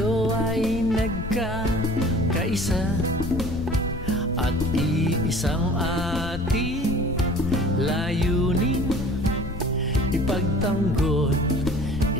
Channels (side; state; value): left; noise; rumble, 9 dB below the sound